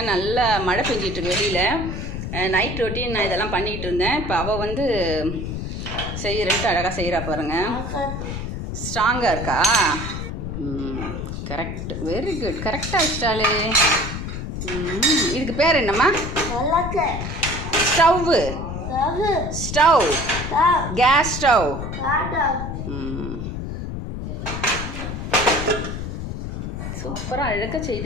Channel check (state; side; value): noise; left; rumble, 5 dB below the sound